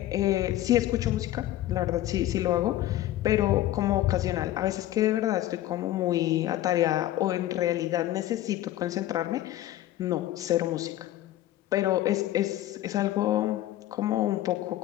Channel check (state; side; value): quieter; right; 14.1 dB